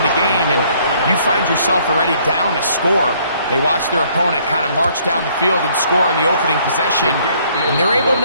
the game, and you find yourself already down a score. They watch their opponent kind of march down the field and score in the opening possession, and they're able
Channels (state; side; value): inverted; both; correlation -0.63